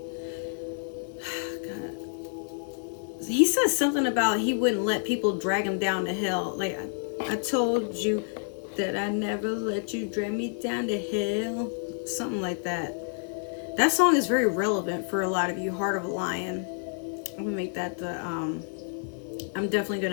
He says something about he wouldn't let people drag him down to hell. Like, I told you that I never let you drag me down to hell. Something like that. That song is very relevant for a lot of you. Heart of a Lion. I'm gonna make that the I'm definitely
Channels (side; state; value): right; silent; 58 dB below the other